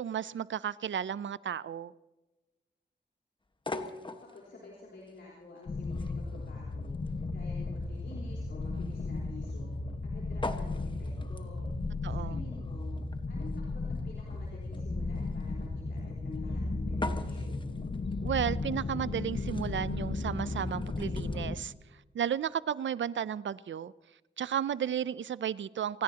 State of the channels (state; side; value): normal; both; correlation 0.45